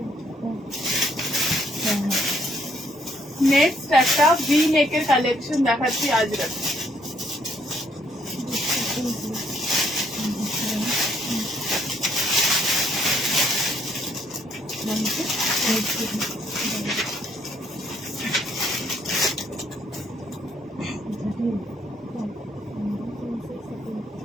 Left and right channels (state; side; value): normal; both; correlation 0.69